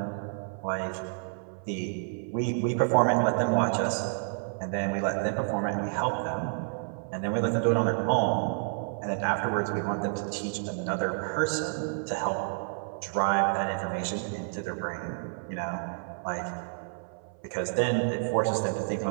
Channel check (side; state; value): left; silent; 58 dB below the other